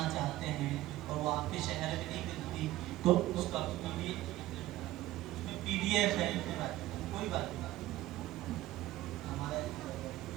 چاہتے ہیں اور وہ آپ کے شہر میں نہیں ملتی تو اس کا پی ڈی ایف ہے، کوئی بات نہیں، ہمارا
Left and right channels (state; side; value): quieter; left; 15.8 dB